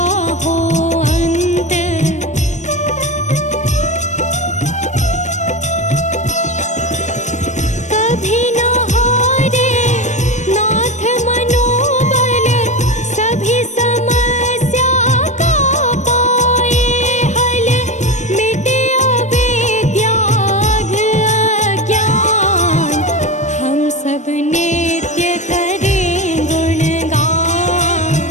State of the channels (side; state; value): right; late; 0.34 ms